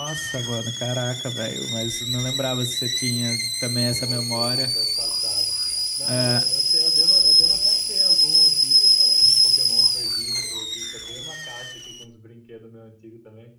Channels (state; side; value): identical; both; correlation 1.00